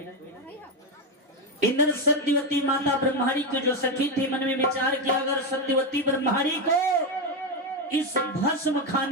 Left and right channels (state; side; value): normal; both; correlation 0.10